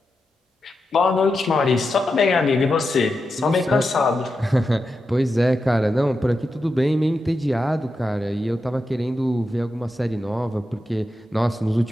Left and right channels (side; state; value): both; normal; correlation 0.88